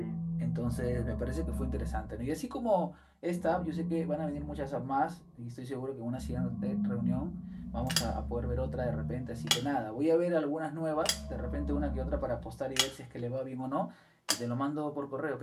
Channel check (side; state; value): both; identical; correlation 1.00